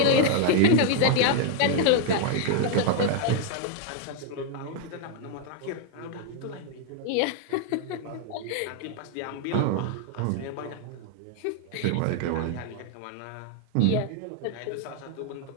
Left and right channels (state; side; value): different; both; correlation 0.00